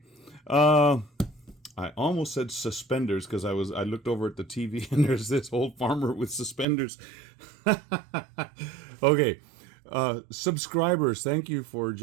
I almost said suspenders because I looked over at the TV and there's this old farmer with suspenders. Okay, subscribers, thank you for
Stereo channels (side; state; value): left; drops out; at 6.7 s